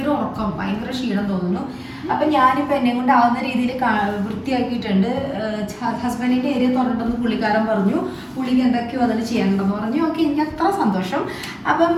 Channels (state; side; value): identical; both; correlation 1.00